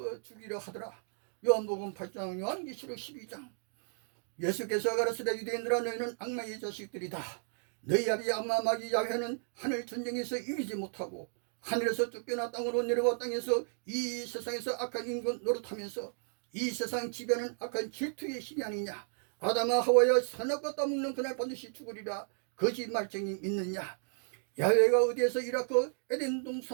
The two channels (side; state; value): left; silent; digital silence